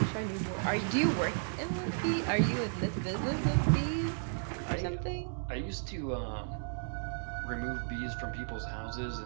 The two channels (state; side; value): silent; left; digital silence